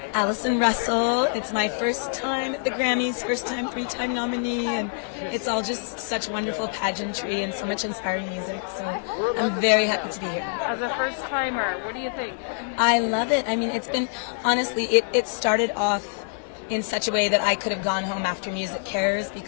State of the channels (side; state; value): right; silent; 61 dB below the other